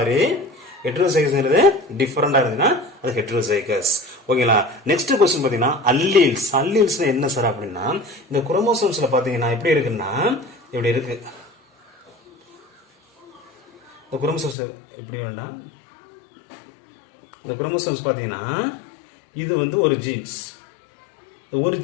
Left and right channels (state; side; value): drops out; right; at 14.6 s